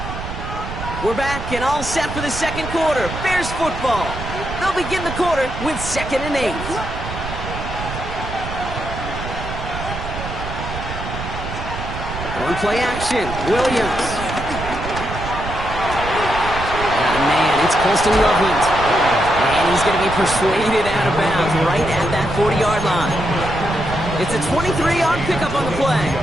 We're back and all set for the second quarter. Bears football. They'll begin the quarter with 2nd and 8. On play action, Williams. Oh man, it's Colston Loveland. And he's going to be persuaded out of bounds right at that 40-yard line. It's a 23-yard pickup on the play.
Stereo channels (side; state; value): right; noise; rumble, 8 dB below the sound